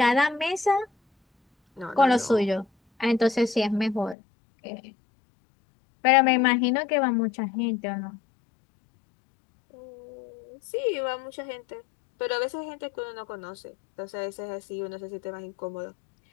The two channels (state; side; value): drops out; right; at 4.2 s